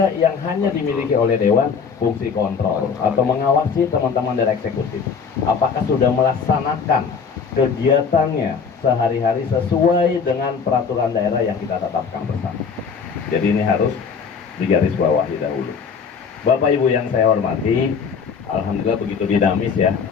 yang hanya dimiliki oleh dewan, fungsi kontrol atau mengawasi teman-teman dari eksekutif. Apakah sudah melaksanakan kegiatannya sehari-hari sesuai dengan peraturan daerah yang kita tetapkan bersama. Jadi ini harus digarisbawahi dahulu. Bapak Ibu yang saya hormati, alhamdulillah begitu dinamis ya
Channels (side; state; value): right; quieter; 5.9 dB